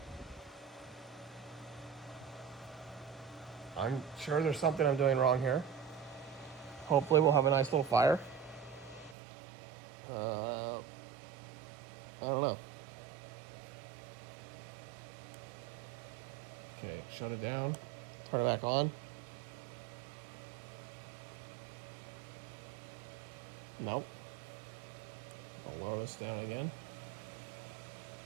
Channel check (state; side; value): drops out; left; at 9.2 s